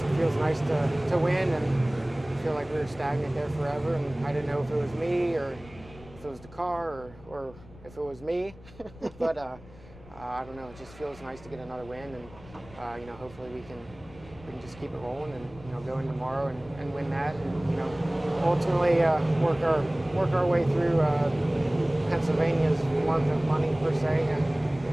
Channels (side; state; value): left; noise; rumble, 20 dB below the sound